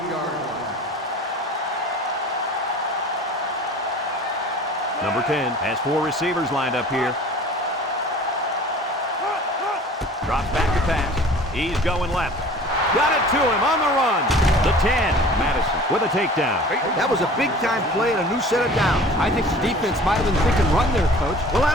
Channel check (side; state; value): both; normal; correlation 0.45